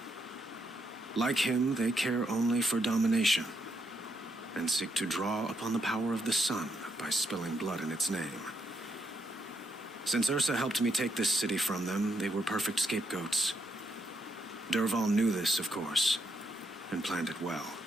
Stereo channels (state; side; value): normal; both; correlation 0.78